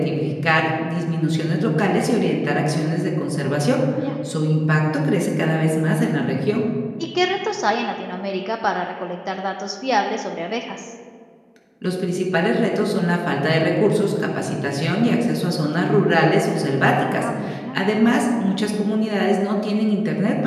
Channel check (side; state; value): both; identical; correlation 1.00